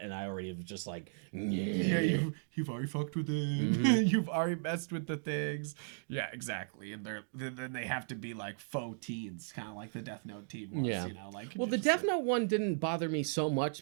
And I already have just like, yeah, you've already fucked with it. You've already messed with the things. Yeah, exactly. And then they have to be like faux teens, kind of like the Death Note teen was. Yeah. You know, like, well, the Death Note one didn't bother me so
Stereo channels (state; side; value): silent; left; digital silence